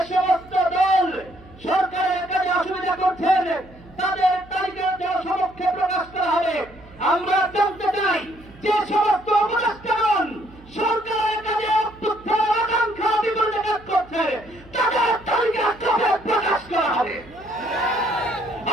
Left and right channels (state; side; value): noise; right; hum, 23 dB below the sound